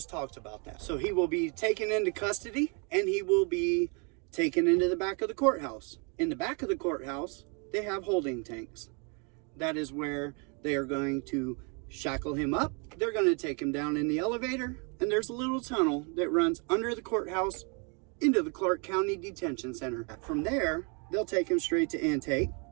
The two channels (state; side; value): quieter; left; 35.1 dB